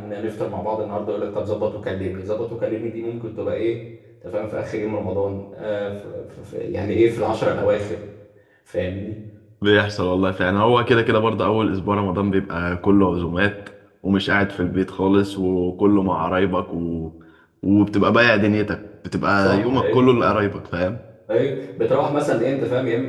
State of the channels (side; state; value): both; identical; correlation 1.00